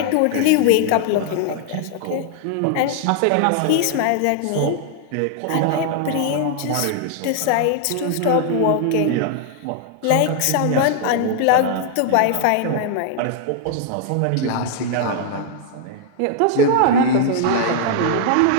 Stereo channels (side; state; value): both; different; correlation 0.00